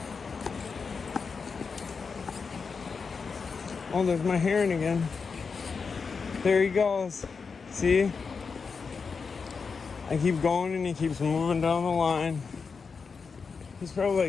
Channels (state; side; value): quieter; right; 5.2 dB